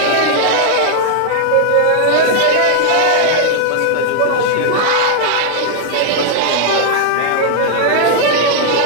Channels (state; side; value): different; both; correlation -0.01